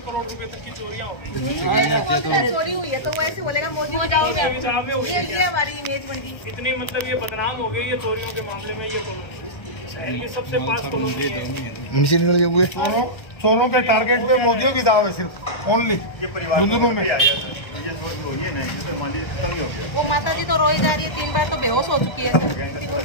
करोड़ रुपए तक की चोरियां हो गई। चोरी हुई है तो वो ऐसे बोलेगा मोदी ये हमारी इमेज बन गई। इतनी मतलब ये बदनाम हो गई ये चोरियों के मामले में, ये कॉलोनी शहर की सबसे पास कॉलोनी है। चोरों के टारगेट पे मोदियों की दाव है सिर्फ ओनली। ये परिवार में आ गया सर, ये चोरी हो रही है ना, ये तो मान लीजिए खत्म ही हो गया। वो माता जी तो रोई जा रही है, 3 बार तो बेहोश हो चुकी है सर।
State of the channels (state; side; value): late; right; 1.3 ms